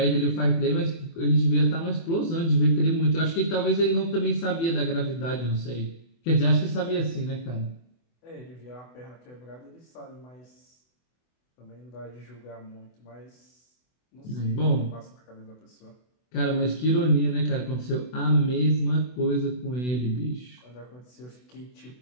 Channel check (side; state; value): right; late; 24 ms